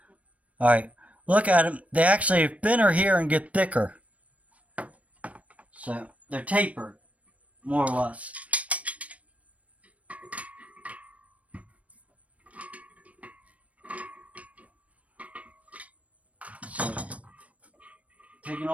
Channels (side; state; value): left; late; 0.066 ms